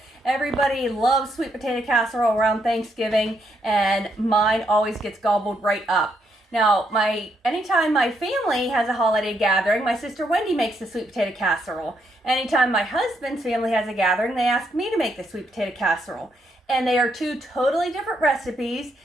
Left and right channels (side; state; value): both; normal; correlation 0.76